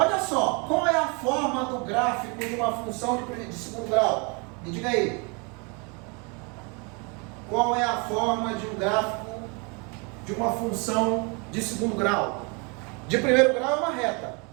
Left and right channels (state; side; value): quieter; left; 32.2 dB